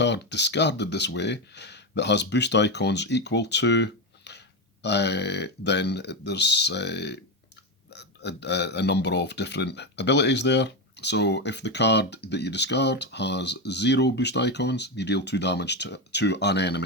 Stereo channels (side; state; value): both; normal; correlation 0.12